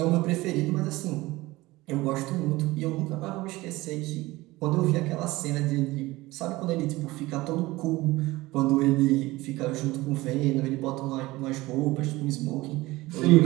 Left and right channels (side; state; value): left; quieter; 19.7 dB